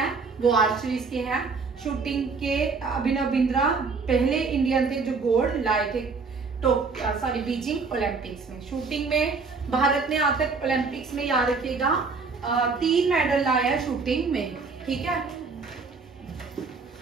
वो आर्चरीज के हैं। शूटिंग के अभिनव बिंद्रा पहले इंडियन थे जो गोल्ड लाए थे बीजिंग ओलंपिक्स में। शूटिंग में भारत ने आज तक ओलंपिक्स में, याद रखिएगा, 3 मेडल लाया है शूटिंग में, ठीक है,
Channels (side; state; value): left; quieter; 4.6 dB